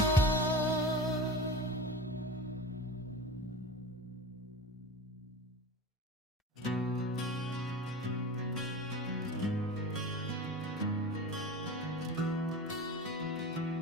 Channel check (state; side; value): normal; both; correlation 0.32